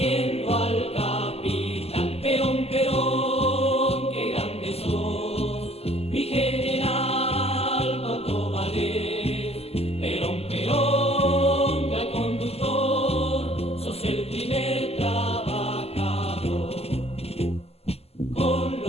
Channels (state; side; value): late; right; 0.29 ms